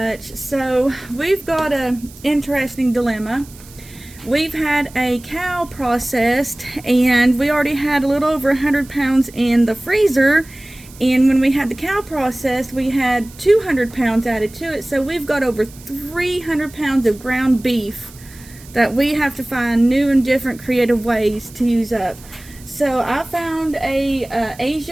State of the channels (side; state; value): right; noise; hiss, 21 dB below the sound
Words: So we've got an interesting dilemma. We've had a cow processed and we already had a little over 100 pounds in the freezer, and when we had the cow processed we had 200 pounds added to it, so we've got over 300 pounds of ground beef that we have to find new and different creative ways to use up. So I found a